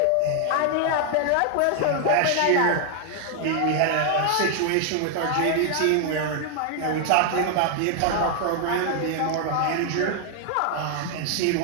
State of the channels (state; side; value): different; both; correlation 0.00